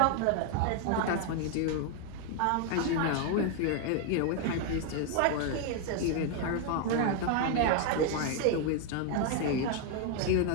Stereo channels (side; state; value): both; different; correlation 0.00